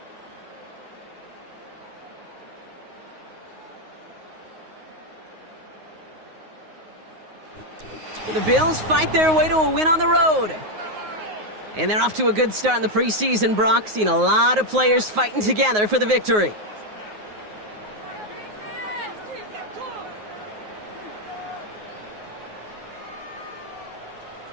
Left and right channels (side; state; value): left; late; 9.5 ms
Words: The Bills fight their way to a win on the road. And they're off to a good start in the preseason, Brock. Seen a lot of players fighting together for the victory.